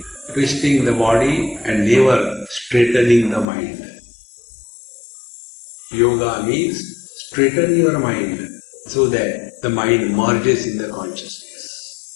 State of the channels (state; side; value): drops out; right; at 3.5 s